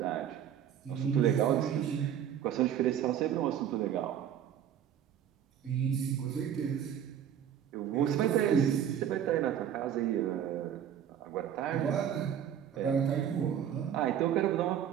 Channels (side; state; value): left; quieter; 9.5 dB